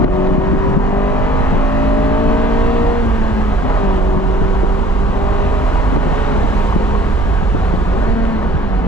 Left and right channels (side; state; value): both; normal; correlation 0.52